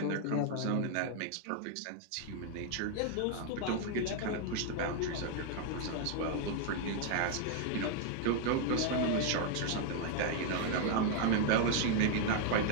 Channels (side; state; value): both; different; correlation 0.00